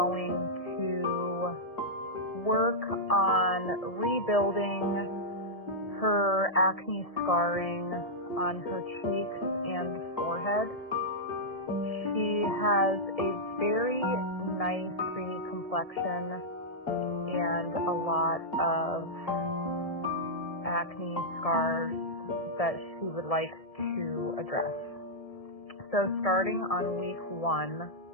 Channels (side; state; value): right; late; 1.7 ms